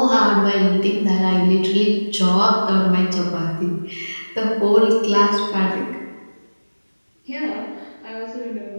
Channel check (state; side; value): inverted; both; correlation -1.00